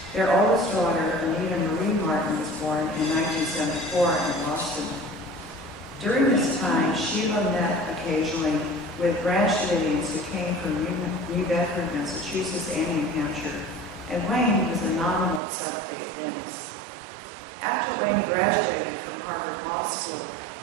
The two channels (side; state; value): left; drops out; at 15.4 s